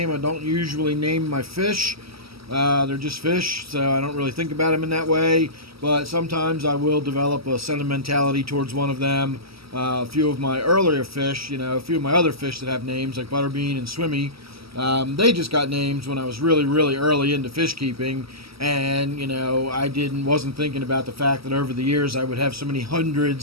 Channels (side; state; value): left; late; 0.76 ms